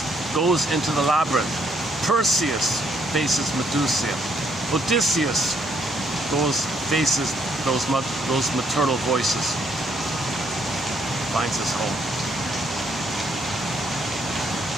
goes into the labyrinth. Perseus faces Medusa. Odysseus faces those maternal voices. Finds his home.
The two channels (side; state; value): both; normal; correlation 0.71